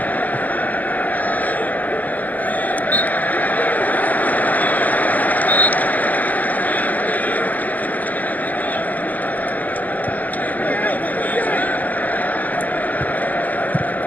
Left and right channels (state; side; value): late; right; 0.080 ms